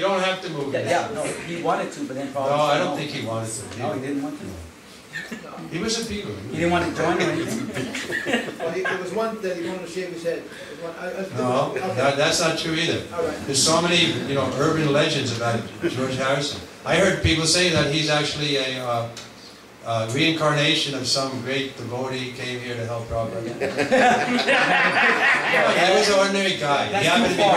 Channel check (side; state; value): both; identical; correlation 1.00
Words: have to move. Yeah, no, he wanted to, but then probably... No, I don't think he wanted to. No, he didn't want to. He was a Beatle. He didn't want to join or anything? Well, there was one that he wanted to shave his head. No, that's not true either. There's so many, urban legends about George Harrison. I heard people say that he's actually a reincarnation of some great devotee came here to help Prabhupada. He was an ordinary guy. He happened to be